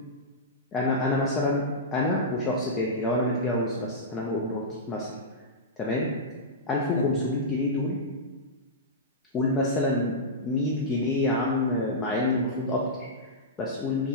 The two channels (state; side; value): normal; both; correlation -0.12